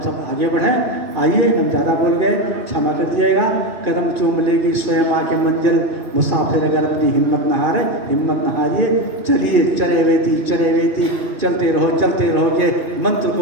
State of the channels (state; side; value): late; left; 2.4 ms